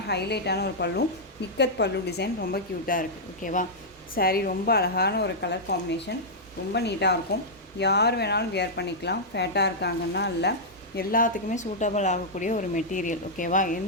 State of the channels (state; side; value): normal; both; correlation -0.08